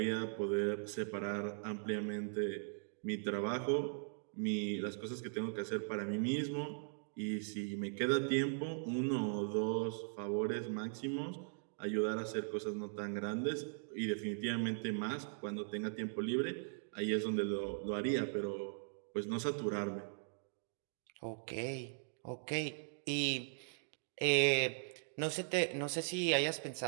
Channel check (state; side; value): silent; left; digital silence